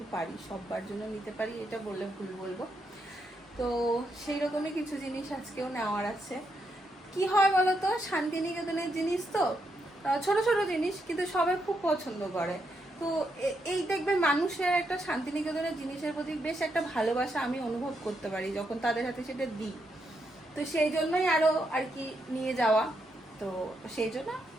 পারি, সবার জন্য নিতে পারি এটা বললে ভুল বলবো। তো সেই রকমই কিছু জিনিস আজকেও নেওয়ার আছে। কি হয় বলতো, শান্তিনিকেতনের জিনিস তো ছোট ছোট জিনিস, কিন্তু সবাই খুব পছন্দ করে। তো এই দেখবে মানুষের একটা শান্তিনিকেতনের জিনিসের প্রতি বেশ একটা ভালোবাসা আমি অনুভব করতে পারি যখন তাদের হাতে সেটা দিই। তো সেই জন্যই আরো আর কি নিয়ে যাওয়া। তো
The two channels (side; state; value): both; normal; correlation 0.80